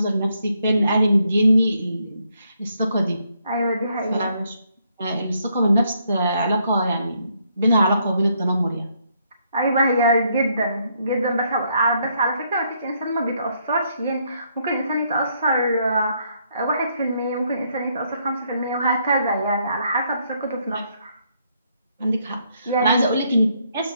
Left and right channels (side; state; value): both; inverted; correlation -0.73